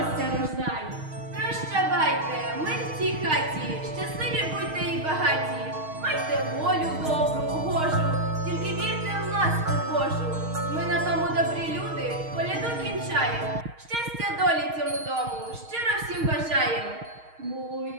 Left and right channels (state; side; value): late; left; 6.4 ms